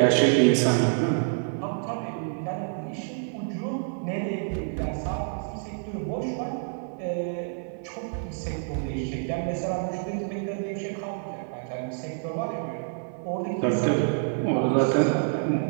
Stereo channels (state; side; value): silent; left; 60 dB below the other